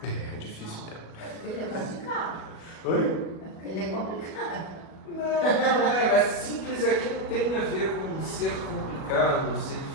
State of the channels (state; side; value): late; right; 37 ms